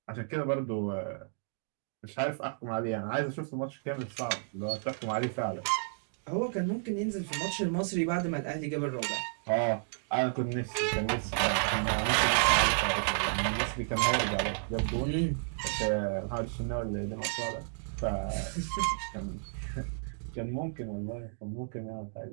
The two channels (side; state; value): left; silent; digital silence